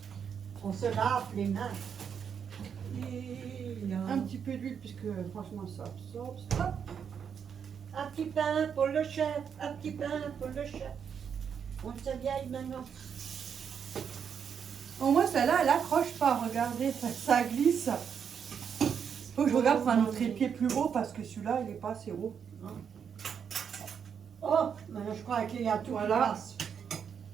On se lave les mains. Et là. Un petit peu d'huile puisque franchement ça absorbe. Hop. Un petit pain pour le chef, un petit pain pour le chef. On se vieille maintenant. Au moins celle-là, elle accroche pas, regardez, ça glisse. Faut que je regarde pour un autre épied plus haut parce que celui-là, il est pas assez haut. Oh, maintenant je crois qu'il y a tout Voilà. qui passe.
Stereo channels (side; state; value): left; quieter; 7.3 dB